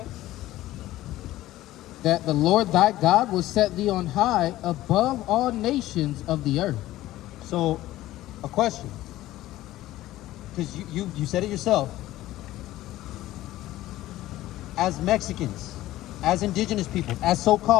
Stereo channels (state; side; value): quieter; right; 15.5 dB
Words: That the Lord thy God will set thee on high above all nations of the earth. So, a question, because you said it yourself. As Mexicans, as indigenous people, as